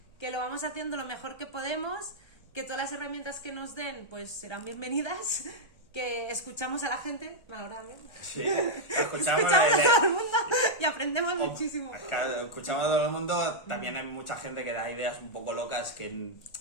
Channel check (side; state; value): right; late; 1.2 ms